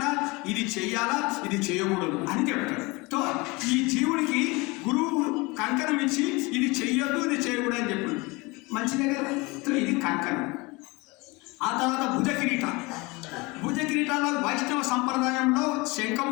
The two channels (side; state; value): right; quieter; 24.8 dB